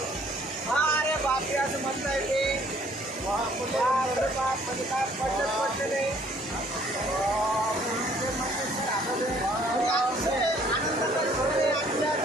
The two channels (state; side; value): normal; both; correlation 0.60